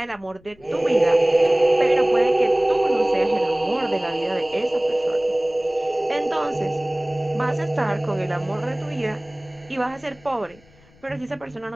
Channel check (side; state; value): left; noise; rumble, 28 dB below the sound